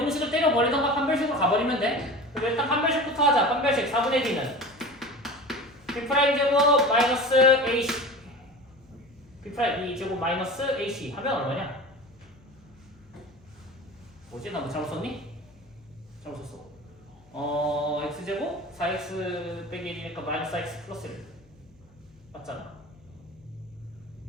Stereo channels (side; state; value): left; noise; hum, 29 dB below the sound